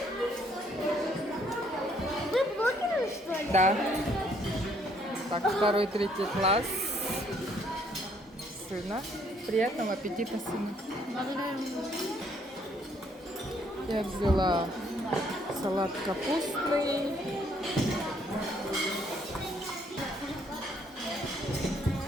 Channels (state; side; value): normal; both; correlation 0.66